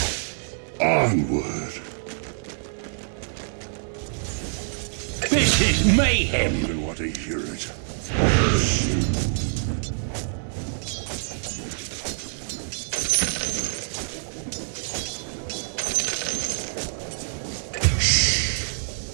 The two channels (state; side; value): silent; left; digital silence